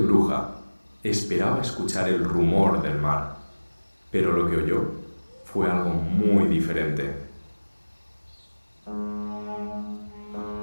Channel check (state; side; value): inverted; both; correlation -1.00